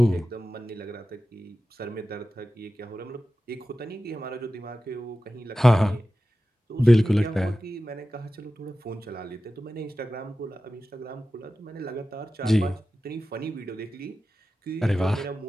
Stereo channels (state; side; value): normal; both; correlation 0.94